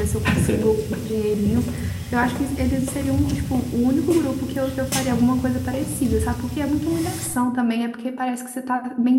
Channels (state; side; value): identical; both; correlation 1.00